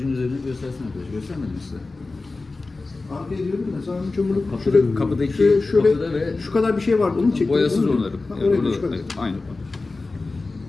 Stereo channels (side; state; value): right; quieter; 3.5 dB